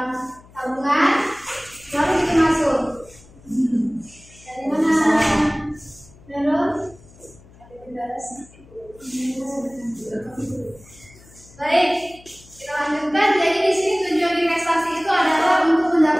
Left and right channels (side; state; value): left; noise; hum, 24 dB below the sound